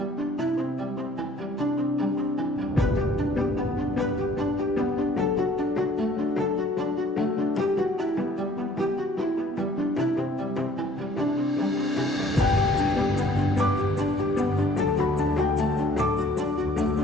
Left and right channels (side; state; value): both; normal; correlation 0.56